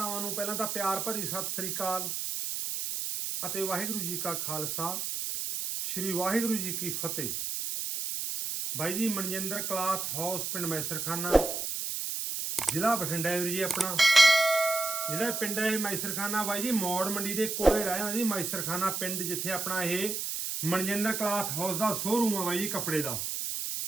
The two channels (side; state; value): right; noise; hiss, 3 dB below the sound